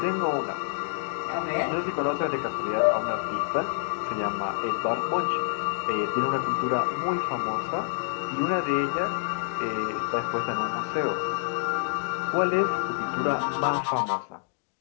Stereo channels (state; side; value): silent; right; digital silence